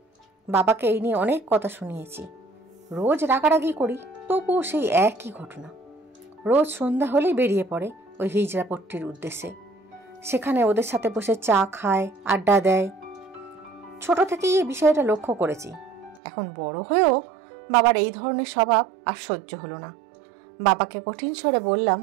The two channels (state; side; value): drops out; left; at 16.2 s